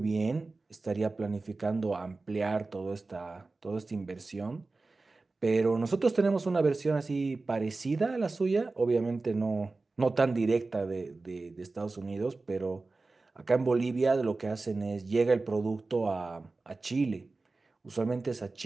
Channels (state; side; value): quieter; left; 3.5 dB